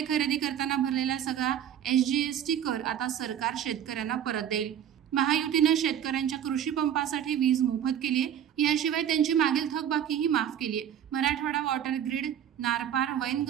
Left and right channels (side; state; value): left; quieter; 9.7 dB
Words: खरेदी करताना भरलेला सगळा SGST कर आता सरकार शेतकऱ्यांना परत देईल। महायुतीने शेतकऱ्यांच्या कृषी पंपासाठी वीज मोफत केली आहे। याशिवाय त्यांची मागील थकबाकीही माफ केली आहे। मराठवाडा वॉटर ग्रिड, नारपार,